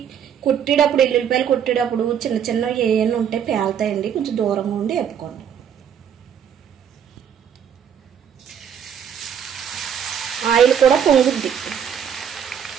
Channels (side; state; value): left; quieter; 8.4 dB